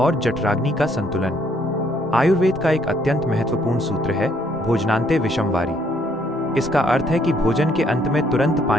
जठराग्नि का संतुलन। आयुर्वेद का एक अत्यंत महत्वपूर्ण सूत्र है, भोजनांते विषम वारी। इसका अर्थ है कि भोजन के अंत में तुरंत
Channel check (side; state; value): right; noise; hum, 26 dB below the sound